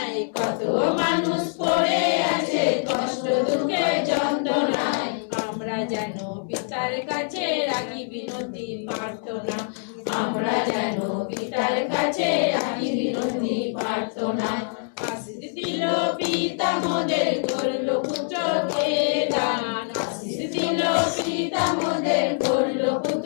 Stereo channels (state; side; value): silent; right; 59 dB below the other